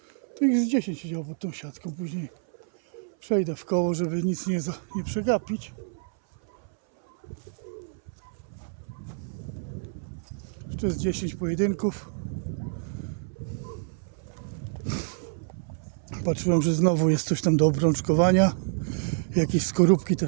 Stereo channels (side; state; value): left; silent; 60 dB below the other